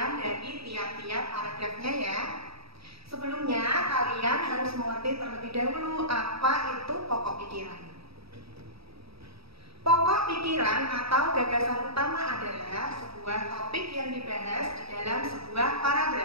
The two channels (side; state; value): left; late; 0.77 ms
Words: dari tiap-tiap paragrafnya ya. Sebelumnya, kalian harus mengerti terlebih dahulu apa itu pokok pikiran. Pokok pikiran atau gagasan utama adalah sebuah topik yang dibahas di dalam sebuah